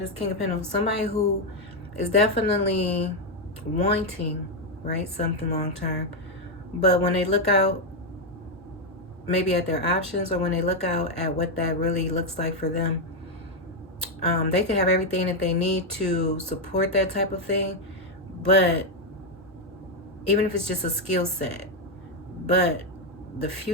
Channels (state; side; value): normal; both; correlation 0.04